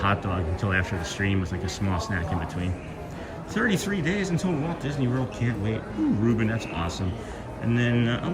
dog until after the stream with like a small snack in between. 33 days until Walt Disney World, can't wait. Ooh, Ruben, that's awesome. And then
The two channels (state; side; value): identical; both; correlation 1.00